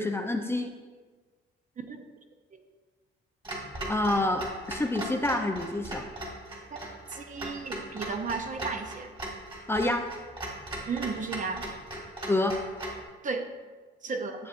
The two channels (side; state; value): both; normal; correlation 0.58